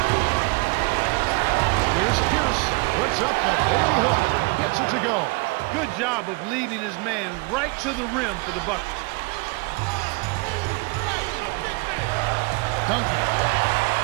Here's Pierce. Puts up the baby hook. Gets it to go. Good job of leading his man right to the rim for the bucket. Duncan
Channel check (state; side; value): quieter; left; 28.0 dB